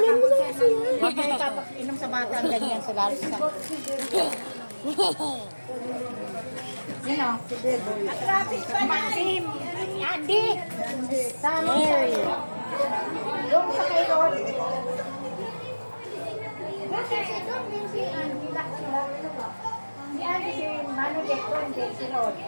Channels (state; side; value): inverted; both; correlation -1.00